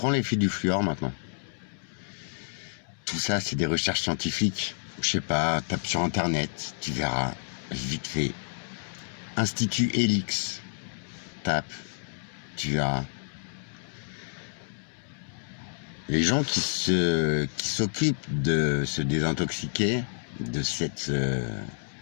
l'effet du fluor maintenant. Tout ça, c'est des recherches scientifiques. Je sais pas, tape sur internet, tu verras, vite fait. Institut Helix, tape, tu verras. Les gens qui s'occupent de se désintoxiquer de cette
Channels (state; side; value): silent; right; digital silence